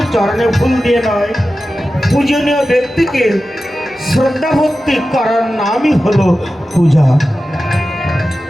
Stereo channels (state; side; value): normal; both; correlation 0.93